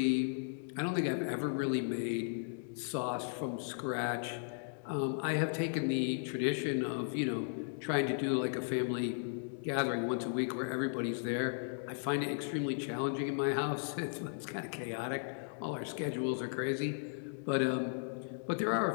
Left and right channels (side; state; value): right; silent; digital silence